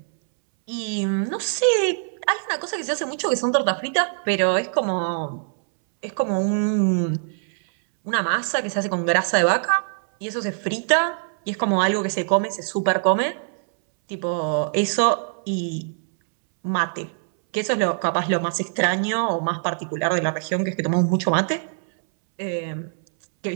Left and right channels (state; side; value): silent; left; 63 dB below the other